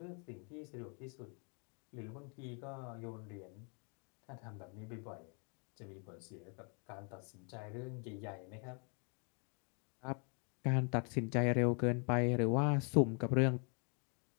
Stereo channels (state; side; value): quieter; right; 38.0 dB